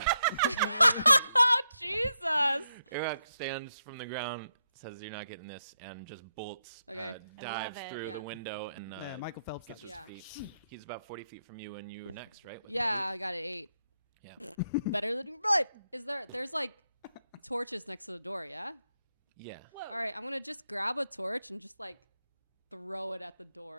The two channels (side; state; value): both; inverted; correlation -0.82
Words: Jesus. Eric stands from the ground, says you're not getting this, and just bolts, Okay. dives it, through yeah. the window and Michael Phelps. gets does. his Yeah. feet. He's about 40 feet from you, and you're next, right? With Yeah, I got an 8. Yeah. Better than right. There's like torches next to the door, yeah? Yeah. Whoa. All right, I'm going to just grab a torch and just like throw it at the